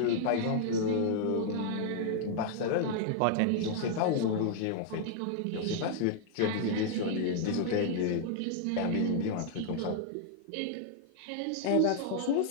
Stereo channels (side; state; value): both; different; correlation -0.01